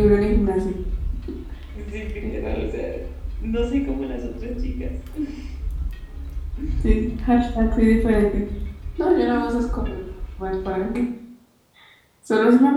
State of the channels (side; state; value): both; identical; correlation 1.00